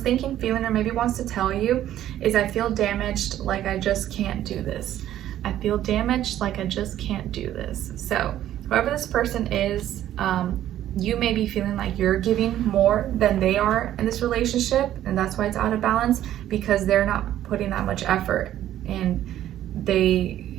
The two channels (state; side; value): quieter; left; 12.3 dB